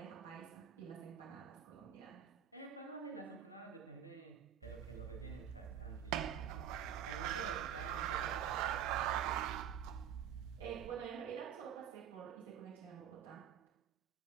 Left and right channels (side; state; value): left; quieter; 9.2 dB